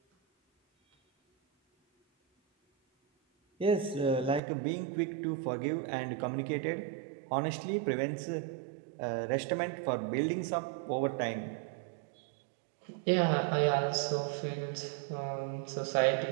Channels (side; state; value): left; drops out; at 4.4 s